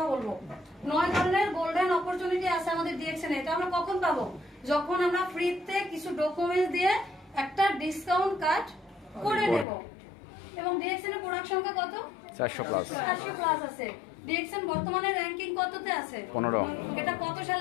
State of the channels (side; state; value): right; drops out; at 9.7 s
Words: বলবো। 9 ধরনের গোল্ডেন অপরচুনিটি আছে আমাদের ডিএক্সএল এ। এটা আমরা কখন পাবো? যখন আমরা ফ্রিতে কিছু ডকুমেন্টস দিয়ে একটা ডিসকাউন্ট কার্ড করে নেব। এবং ডিএক্সএল এর প্রোডাক্ট সংখ্যা কত? 400 প্লাস। 400 প্লাস আছে। ডিএক্সএল বর্তমানে র‍্যাঙ্কিং কততে আছে? 15। এটা কত